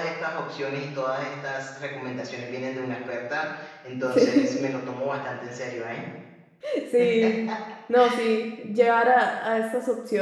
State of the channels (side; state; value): both; identical; correlation 1.00